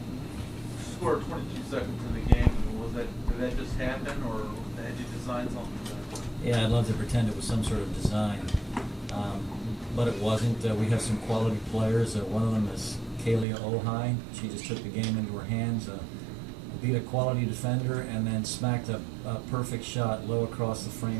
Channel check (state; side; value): drops out; left; at 13.5 s